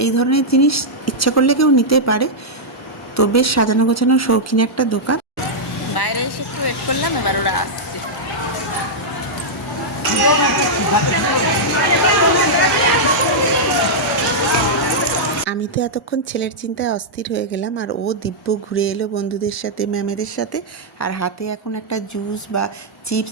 এই ধরনের জিনিস ইচ্ছা করলে কেউ নিতে পারে। তো বেশ সাজানো গোছানো শৌখিন একটা দোকান। বাইরে এসে একটু ওয়েট করলাম, এবার ওরা আসছে। আমি তো এতক্ষণ ছেলের চিন্তায় অস্থির হয়ে গেলাম, আর ও দিব্য ঘুরে এলো বন্ধুদের সাথে, ম্যামেদের সাথে, আর হাতে এখন একটা জুস বা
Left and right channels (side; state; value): both; normal; correlation -0.07